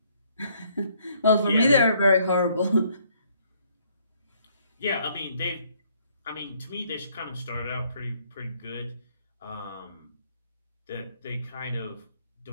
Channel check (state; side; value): inverted; both; correlation -0.66